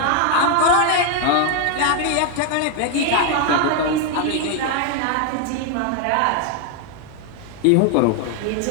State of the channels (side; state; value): both; different; correlation 0.01